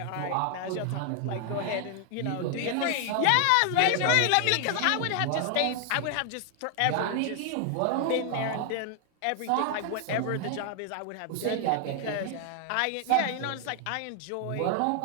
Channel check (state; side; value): different; both; correlation 0.00